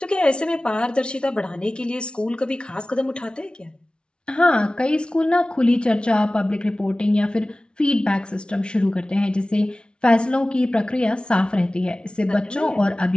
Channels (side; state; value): right; late; 0.056 ms